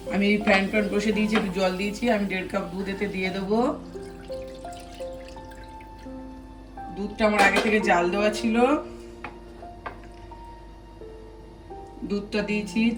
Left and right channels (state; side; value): identical; both; correlation 1.00